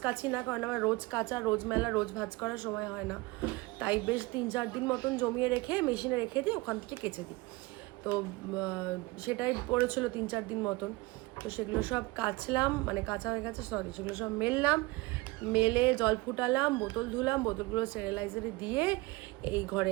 কাচি না, কারণ আমার রোজ কাচা, রোজ মেলা, রোজ ভাঁজ করার সময় হয় না। তাই বেশ 3-4 দিন মতন জমিয়ে রেখে মেশিনে রেখে দিই, ওখান থেকে কেচে দিই। তো সেটাই পড়েছিল 3-4 দিন মতন। তো সেগুলো সব কাচলাম, মানে কাঁচা হয়ে গেছে, সরি, সেগুলো সব মেললাম, মেলে জল ফুটালাম, বোতল ধুলাম, বোতলগুলো স্টেরিলাইজারে দিয়ে এই ঘরে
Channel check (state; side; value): quieter; left; 22.7 dB